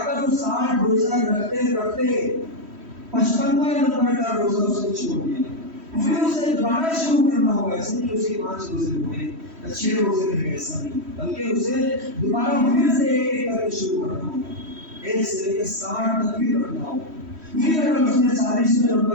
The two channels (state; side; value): late; left; 3.1 ms